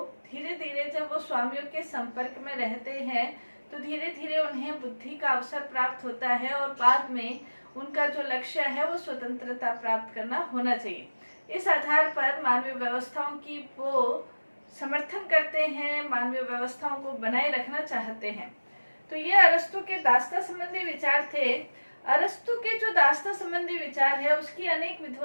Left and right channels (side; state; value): both; inverted; correlation -1.00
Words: धीरे धीरे जब वो स्वामियों के संपर्क में रहते हैं तो धीरे धीरे उन्हें बुद्धि का अवसर प्राप्त होता है, और बाद में उनका जो लक्ष्य है वो स्वतंत्रता प्राप्त करना होना चाहिए। इस आधार पर मानवीय व्यवस्थाओं की वो समर्थन करते हैं, मानवीय व्यवस्थाओं को बनाए रखना चाहते हैं। तो ये अरस्तु के दास्ता संबंधी विचार थे। अरस्तु के जो दास्ता संबंधी विचार है उसकी अनेक